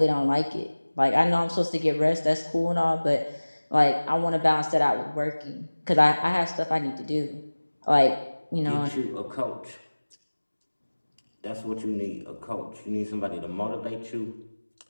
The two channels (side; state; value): both; inverted; correlation -1.00